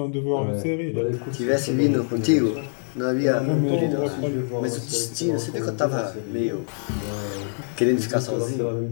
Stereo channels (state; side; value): silent; right; 59 dB below the other